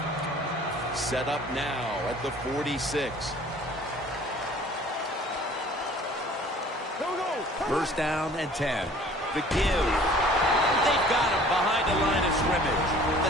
Set up now at the 46. First down and 10. The give. They've got him behind the line of scrimmage. The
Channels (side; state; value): both; normal; correlation 0.50